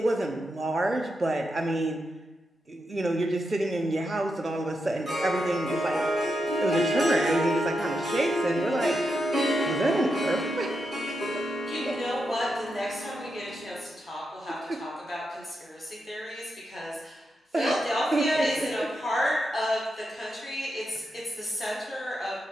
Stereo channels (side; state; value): both; normal; correlation 0.85